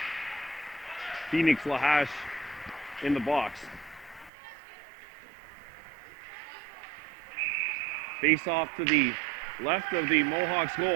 Phoenix Lahash in the box. Face off to the left of the Mohawks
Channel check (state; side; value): drops out; left; at 4.3 s